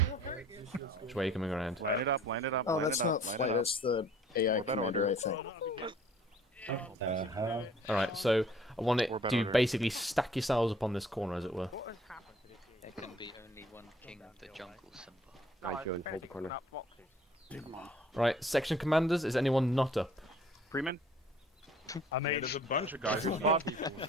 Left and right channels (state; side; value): normal; both; correlation 0.55